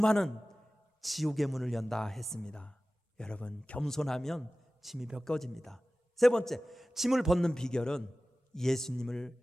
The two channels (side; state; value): both; normal; correlation 0.96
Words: 지옥의 문을 연다 했습니다. 여러분, 겸손하면 짐이 벗겨집니다. 세 번째, 짐을 벗는 비결은 예수님을